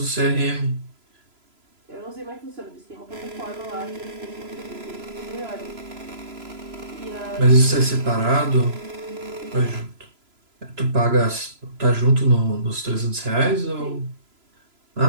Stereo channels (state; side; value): late; left; 3.0 ms